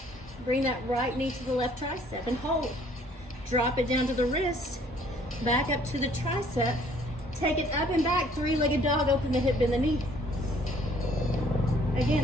Bring that right knee to the left tricep and hold. Drop it down to the wrist, back up to the tricep. Take it up and back, 3-legged dog, open the hip, bend the knee.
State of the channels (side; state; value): both; normal; correlation 0.59